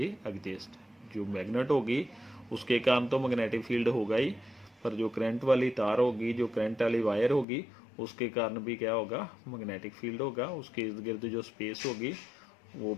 exist. जो मैग्नेट होगी उसके कारण तो मैग्नेटिक फील्ड होगा ही, पर जो करंट वाली तार होगी, जो करंट वाली वायर होगी, उसके कारण भी क्या होगा, मैग्नेटिक फील्ड होगा। उसके इर्द गिर्द जो स्पेस होगी वो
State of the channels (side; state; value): right; drops out; at 7.5 s